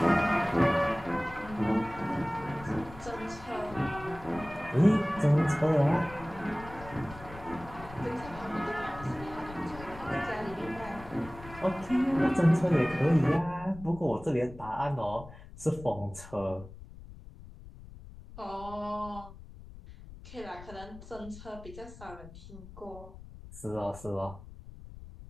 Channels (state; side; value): noise; left; rumble, 16 dB below the sound